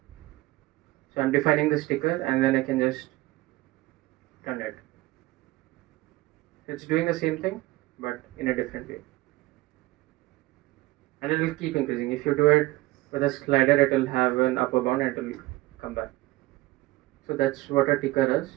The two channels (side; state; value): left; quieter; 19.3 dB